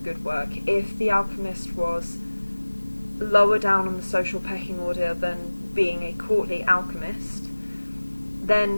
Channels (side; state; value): both; inverted; correlation -1.00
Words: good work. If the alchemist was lower down on the social pecking order than being a courtly alchemist,